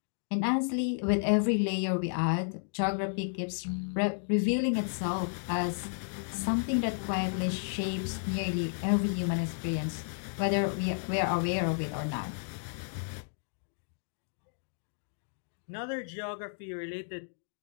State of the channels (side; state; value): right; silent; digital silence